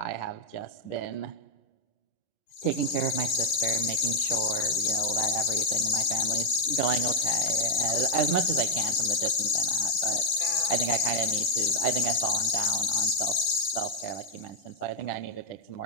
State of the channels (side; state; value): right; late; 11 ms